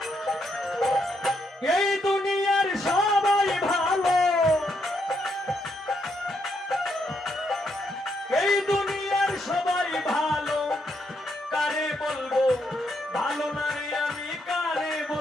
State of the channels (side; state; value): both; normal; correlation 0.77